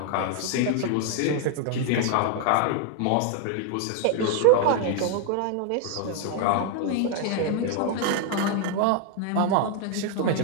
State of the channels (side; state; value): both; different; correlation 0.00